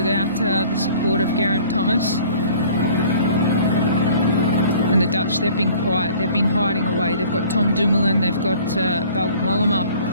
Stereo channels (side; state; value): both; inverted; correlation -0.51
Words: the support of Geraint Thomas. And the Dutch, they've been quiet, they've been hiding away. They've got Tom Dumoulin, they've got Wout Mollema,